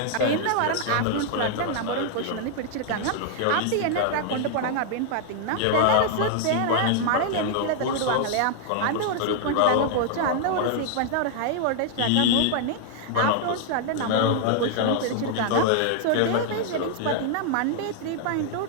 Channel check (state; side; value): different; both; correlation 0.00